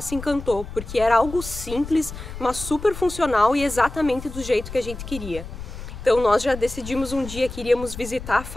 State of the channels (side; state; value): left; noise; rumble, 11 dB below the sound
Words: se encantou, porque era algo simples, mas super funcional e exatamente do jeito que a gente queria. Então nós já decidimos um dia que iríamos visitar a